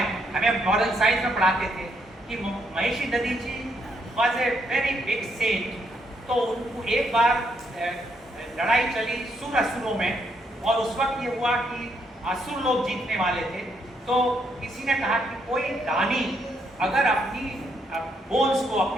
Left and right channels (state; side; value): normal; both; correlation 0.75